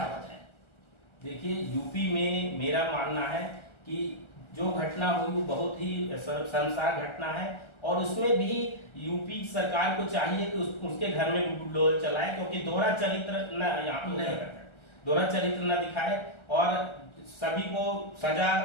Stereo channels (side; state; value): right; late; 1.3 ms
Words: मत है? देखिए, यूपी में मेरा मानना है कि जो घटना हुई वो बहुत ही शर्मसार घटना है और उसमें भी यूपी सरकार को चाहिए कि उसके घर में बुलडोजर चलाए, क्योंकि दोहरा चरित्र न दिखाए और सभी को सजा,